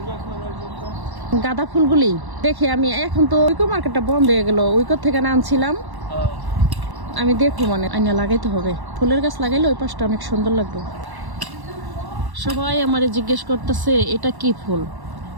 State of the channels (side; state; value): left; late; 1.1 ms